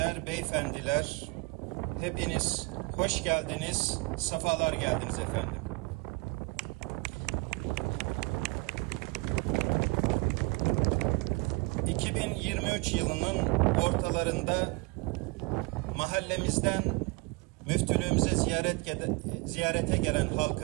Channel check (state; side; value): quieter; left; 27.0 dB